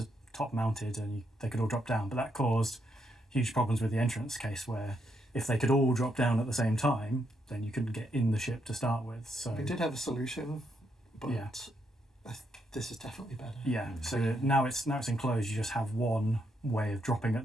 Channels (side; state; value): both; normal; correlation 0.78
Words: mounted, and they could all drop down. But that caused huge problems with the entrance case, where if they could all drop down at the same time, then you couldn't get in the ship to start with. So we did have a solution, but this is definitely better. Yeah. So now it's enclosed. You just have one way of dropping at